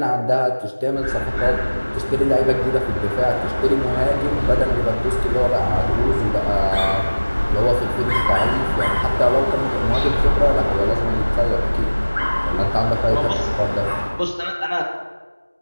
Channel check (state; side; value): inverted; both; correlation -1.00